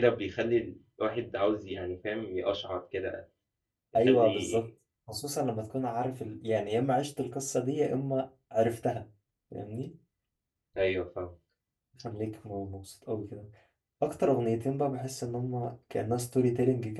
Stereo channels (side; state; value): both; identical; correlation 1.00